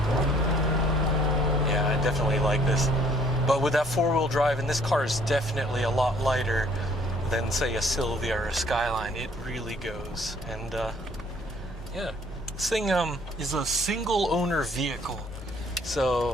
Yeah, I definitely like this. But with that four-wheel drive, and this car is definitely a lot lighter than, say, a Sylvia or a Skyline. It really goes. And yeah, this thing is a single owner vehicle,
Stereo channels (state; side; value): normal; both; correlation 0.61